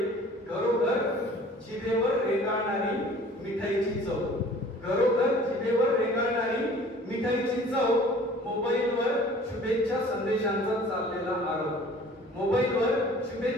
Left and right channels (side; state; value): both; normal; correlation 0.49